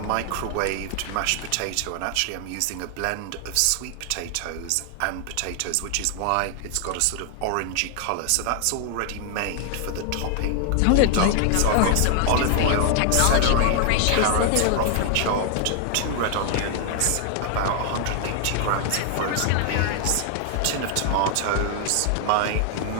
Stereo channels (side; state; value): both; different; correlation 0.00